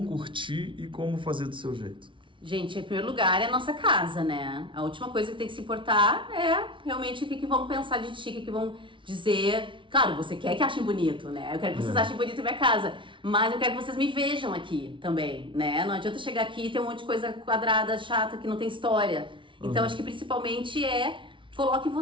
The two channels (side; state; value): left; late; 0.25 ms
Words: curtir e como fazer do seu jeito. Gente, em primeiro lugar é a nossa casa, né? A última coisa que tem que se importar é realmente o que vão pensar de ti, o que vão dizer. Claro, você quer que achem bonito, né? Eu quero que vocês achem bonito a minha casa, mas eu quero que vocês me vejam aqui também, né? Não adianta chegar aqui e ter um monte de coisa quadrada, chata, que não tem história. Então, acho que principalmente coloque